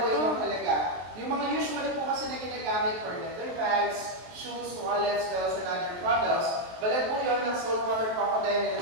to. yung halaga. Yung mga usually po kasi na ginagamit for leather bags, shoes, wallets, bells, and other products. Balat po yun ng saltwater crocodile na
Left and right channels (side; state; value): left; late; 23 ms